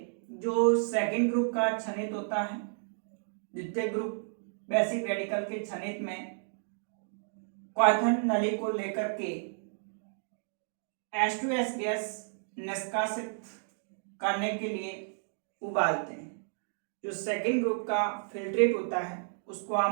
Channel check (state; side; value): silent; left; digital silence